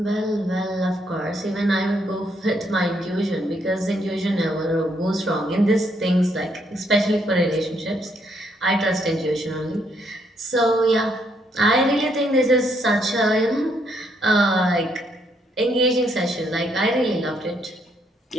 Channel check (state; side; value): normal; both; correlation 0.73